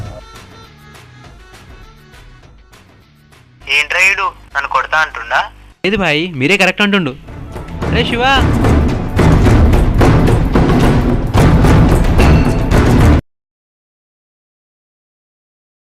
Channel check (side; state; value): both; identical; correlation 1.00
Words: ఏంట్రా ఈడు నన్ను కొడతా అంటుండా? లేదు భాయ్, మీరే కరెక్ట్ అంటుండు. అరే శివ,